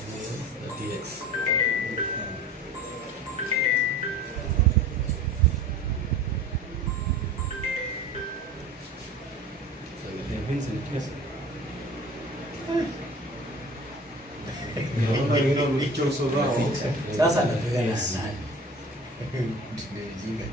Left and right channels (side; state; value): both; normal; correlation 0.40